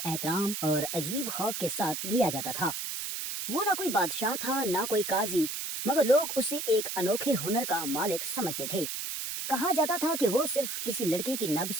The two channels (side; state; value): right; noise; hiss, 4 dB below the sound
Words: और अजीब खौफ के साथ लिया जाता था। वो ना कोई बादशाह था ना कोई काजी, मगर लोग उसे एक अनोखे हुनर का मालिक समझते थे। कहा जाता था कि वो सिर्फ किसी लड़की की